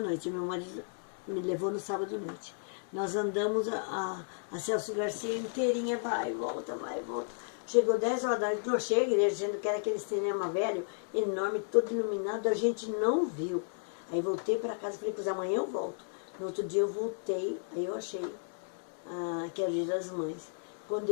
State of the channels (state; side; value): silent; right; digital silence